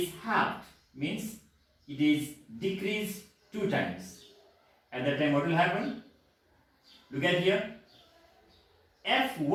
halved, means it is decreased 2 times. At that time, what will happen? Look at here.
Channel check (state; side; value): identical; both; correlation 1.00